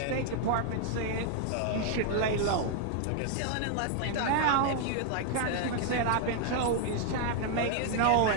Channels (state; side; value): different; both; correlation 0.00